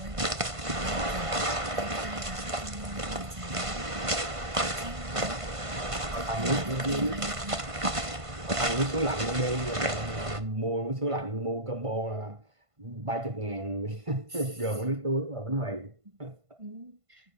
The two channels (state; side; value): late; left; 1.5 ms